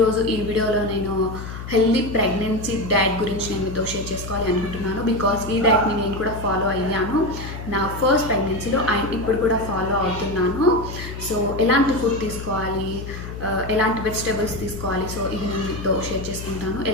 ఈ వీడియోలో నేను హెల్దీ ప్రెగ్నెన్సీ డైట్ గురించి నేను మీతో షేర్ చేసుకోవాలి అనుకుంటున్నాను. బికాస్ ఈ డైట్ని నేను కూడా ఫాలో అయ్యాను నా ఫస్ట్ ప్రెగ్నెన్సీలో అండ్ ఇప్పుడు కూడా ఫాలో అవుతున్నాను. సో ఎలాంటి ఫుడ్ తీసుకోవాలి, ఎలాంటి వెజిటేబుల్స్ తీసుకోవాలి, సో ఇది నేను మీతో షేర్ చేసుకుంటాను.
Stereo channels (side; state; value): left; noise; hum, 9 dB below the sound